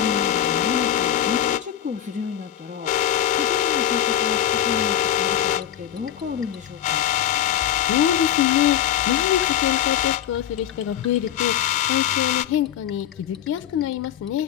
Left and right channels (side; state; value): right; quieter; 10.7 dB